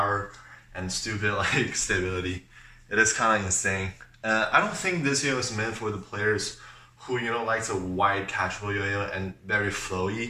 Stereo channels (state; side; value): identical; both; correlation 1.00